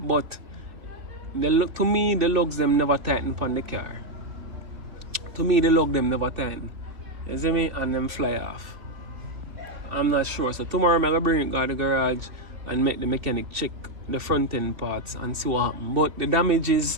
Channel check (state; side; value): late; left; 2.7 ms